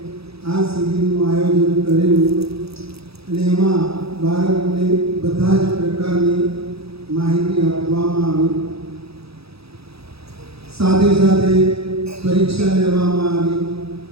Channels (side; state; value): left; late; 0.77 ms